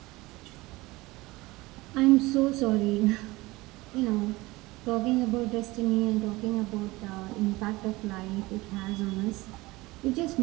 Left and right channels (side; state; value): left; quieter; 20.9 dB